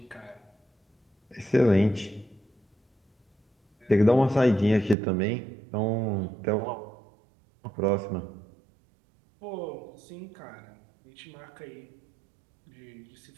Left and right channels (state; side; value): drops out; left; at 5.0 s